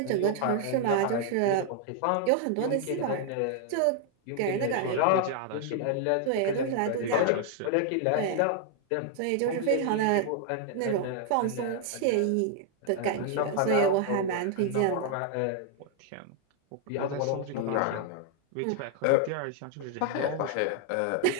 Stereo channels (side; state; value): both; different; correlation 0.00